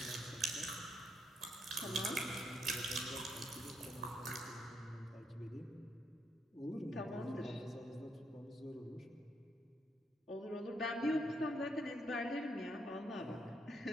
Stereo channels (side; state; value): both; normal; correlation 0.76